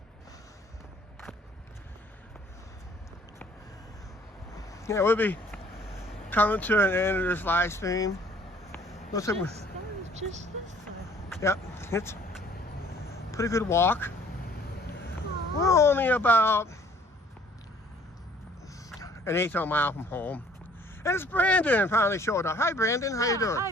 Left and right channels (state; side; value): normal; both; correlation 0.56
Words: Yeah, we'll be coming to an end of this live stream. Looks like That was just this way. yep, it's a pretty good walk. We're only about an 1/8 mile from home. And it's Brandon finally showed up. Hi Brandon, how you doing?